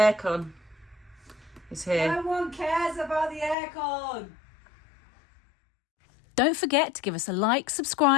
is here. No one cares about the aircon. Don't forget to give us a like,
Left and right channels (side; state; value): right; drops out; at 3.6 s